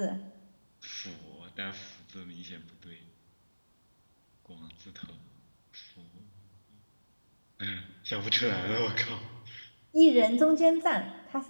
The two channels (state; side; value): inverted; both; correlation -1.00